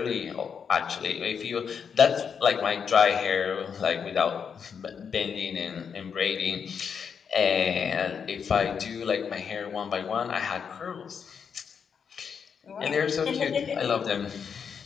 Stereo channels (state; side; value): quieter; right; 6.7 dB